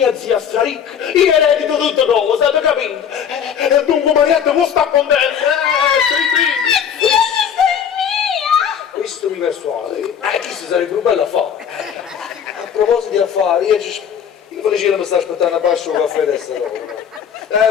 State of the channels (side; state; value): right; quieter; 8.1 dB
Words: zia straricca. Io eredito tutte cose, avete capito? Dunque Marietta può stare contenta. Questo mi persuade. Questo sarebbe un bel affare. A proposito di affari, io Felicina mi sta aspettando a basso un caffè adesso.